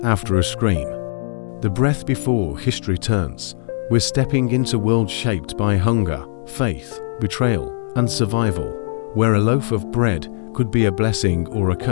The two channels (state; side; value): silent; right; 66 dB below the other